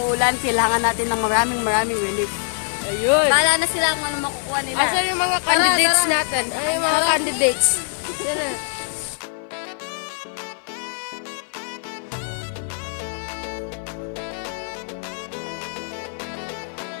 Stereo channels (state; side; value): silent; right; 55 dB below the other